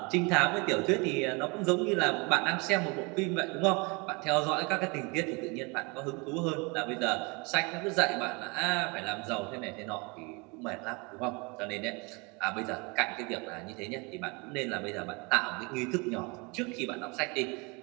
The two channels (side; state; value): left; quieter; 29.1 dB